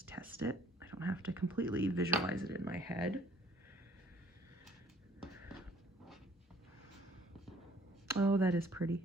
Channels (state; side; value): normal; both; correlation 0.60